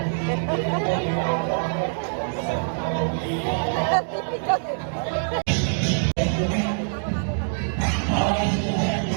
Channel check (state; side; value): silent; left; digital silence